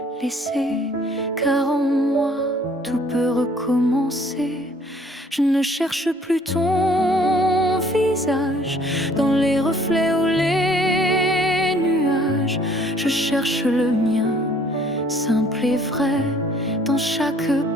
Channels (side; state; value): both; normal; correlation 0.58